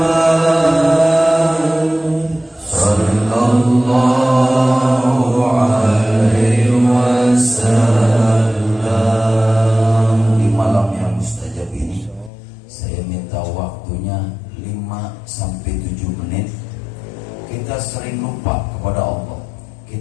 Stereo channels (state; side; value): drops out; right; at 12.3 s